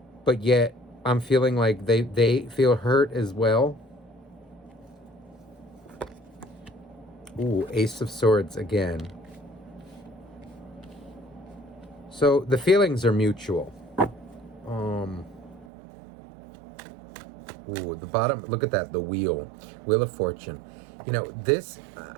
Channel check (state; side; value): drops out; left; at 15.7 s